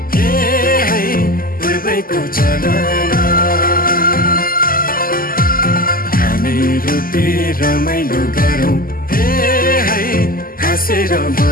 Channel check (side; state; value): right; late; 0.42 ms